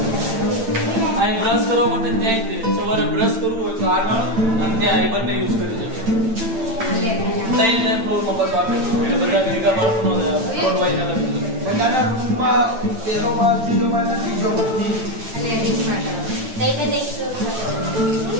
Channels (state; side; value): late; left; 8.9 ms